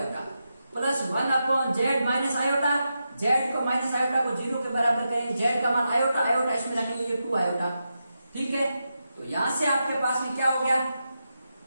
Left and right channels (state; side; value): inverted; both; correlation -0.88